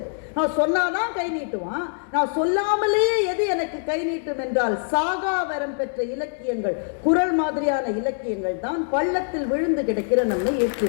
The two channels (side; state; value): right; silent; digital silence